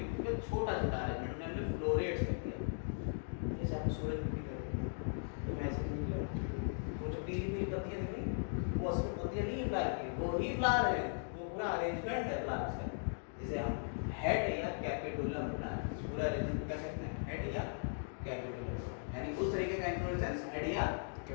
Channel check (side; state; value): right; silent; digital silence